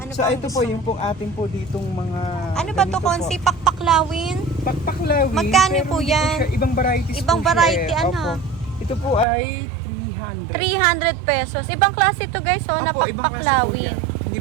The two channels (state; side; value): drops out; left; at 9.2 s